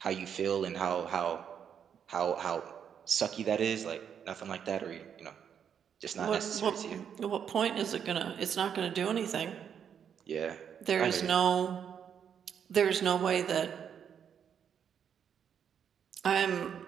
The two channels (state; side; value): quieter; left; 8.0 dB